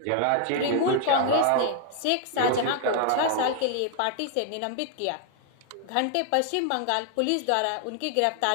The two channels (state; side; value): different; both; correlation 0.00